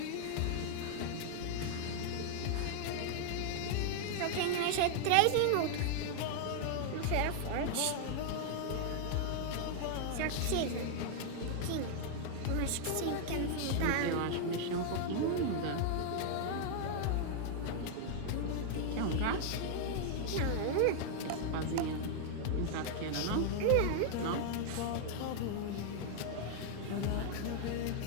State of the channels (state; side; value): different; both; correlation 0.00